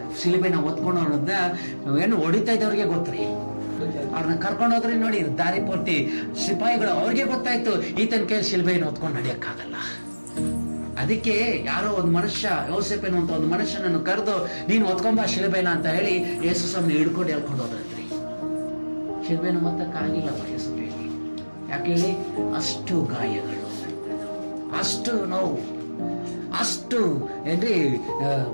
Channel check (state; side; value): inverted; both; correlation -1.00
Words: ಶಿಲುಬೆನ ಹೊತ್ಕೊಂಡು ಅನ್ನೋದ ಏನು ಹೊಡಿತಾ ಇದ್ದವ್ರಿಗೆ ಗೊತ್ತ್ರಿ. ಅವ್ರನ್ನ ಕರ್ಕೊಂಡು ಹೋದ್ರಿ ನೋಡಿ, ದಾರಿ ಪೂರ್ತಿ ಸಿಪಾಯಿಗಳು, ಅವ್ರಿಗೆ ಗೊತ್ತಾಯ್ತು ಈತನ ಕೈಯಲ್ಲಿ ಶಿಲ್ಬೆಯನ್ನು ಹೊತ್ಕೊಂಡು ನಡೆಯಕ್ಕಾಗಲ್ಲ. ಅದಕ್ಕೆ ಯಾರೋ ಒಂದು ಮನುಷ್ಯ, ಯೋಸೇಫನು ಅಂತ ಒಂದು ಮನುಷ್ಯನನ್ನು ಕರೆದು ನೀನು ಹೊತ್ಕೊಂಬ ಶಿಲ್ಬೆನ ಅಂತ ಹೇಳಿ ಯೇಸು ಸ್ವಾಮಿ ಹಿಡ್ಕೊಂಡು ಹೇಳ್ಕೊಂಡು ಹೋದ್ರಿ. ಶಿಲ್ಬೆನ ಮೊತ್ತಕ್ಕಾಗಿಲ್ಲ ಯೇಸು ಹೇಳಿ. ಯಾಕೆ ಹೇಳಿ? ಅಷ್ಟು ಗಾಯಗಳು, ಅಷ್ಟು ನೋವು, ಅಷ್ಟು ಏನ್ರಿ